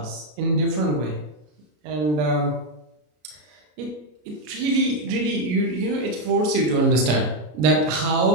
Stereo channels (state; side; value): late; left; 33 ms